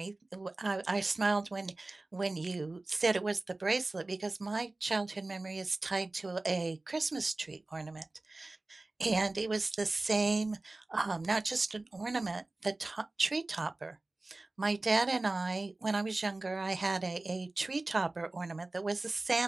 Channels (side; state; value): left; quieter; 3.0 dB